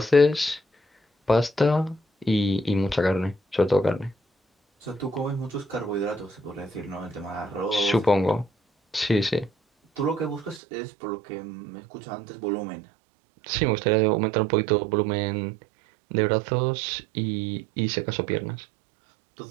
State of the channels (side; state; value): left; drops out; at 10.6 s